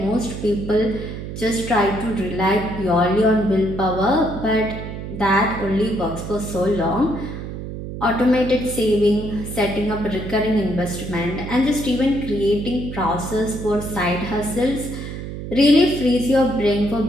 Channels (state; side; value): noise; right; hum, 8 dB below the sound